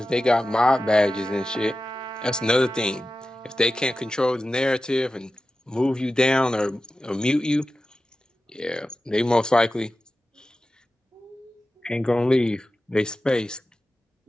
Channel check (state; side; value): normal; both; correlation 0.94